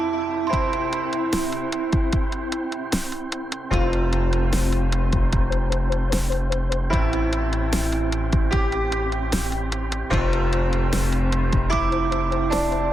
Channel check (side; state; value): both; normal; correlation 0.89